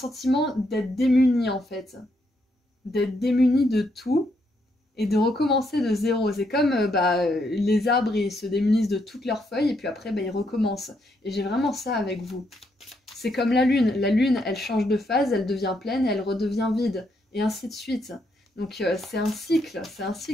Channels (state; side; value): normal; both; correlation 0.76